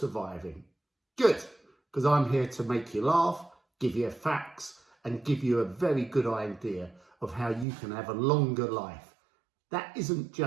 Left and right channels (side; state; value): left; drops out; at 7.7 s